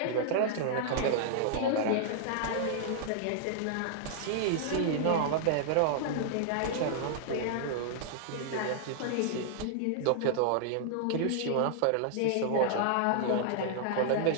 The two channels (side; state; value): both; different; correlation -0.01